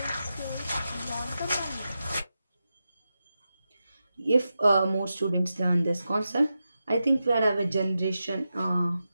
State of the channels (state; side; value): inverted; both; correlation -0.90